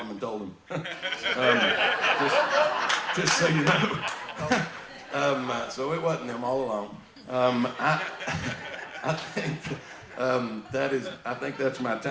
and told him. Just so you know. So it wasn't them all along. I think that's my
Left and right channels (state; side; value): identical; both; correlation 1.00